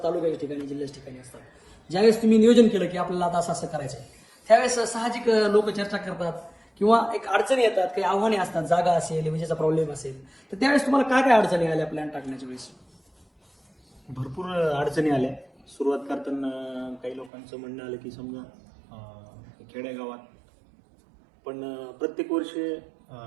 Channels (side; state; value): left; drops out; at 17.3 s